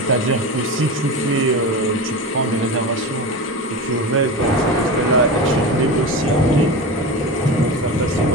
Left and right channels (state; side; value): normal; both; correlation 0.25